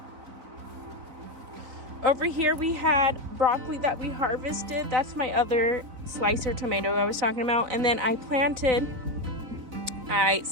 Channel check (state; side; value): late; left; 4.0 ms